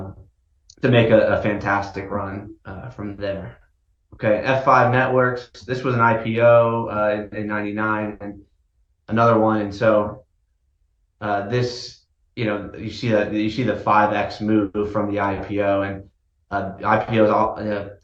to make a fantastic run from there. Okay, F5 Networks. This was an IPO in 99 and another one. And so this, you see the 5x move from the IPO, and IPO is all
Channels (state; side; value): identical; both; correlation 1.00